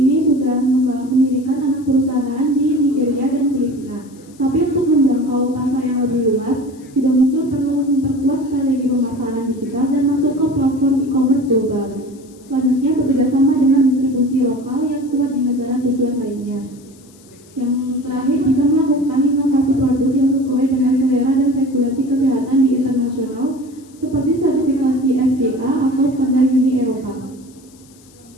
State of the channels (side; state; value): left; noise; hiss, 27 dB below the sound